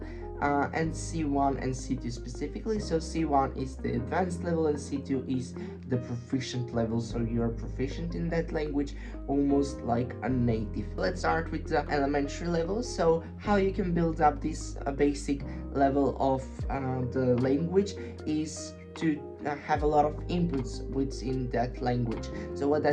And C1 and C2 specifically. So C1 is the advanced level and C2 is the proficient level. So you're proficient in that language almost like a native. Let's start with the elementary level. So how you can build up this basic level of the language is to have a lot of inputs within that language. So what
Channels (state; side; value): identical; both; correlation 1.00